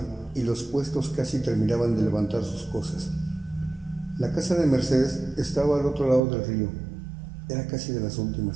y los puestos casi terminaban de levantar sus cosas. La casa de Mercedes estaba al otro lado del río. Era casi de las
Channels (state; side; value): drops out; left; at 6.2 s